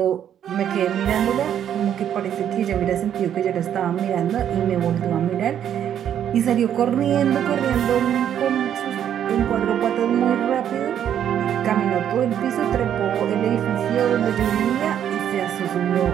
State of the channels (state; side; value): quieter; left; 9.7 dB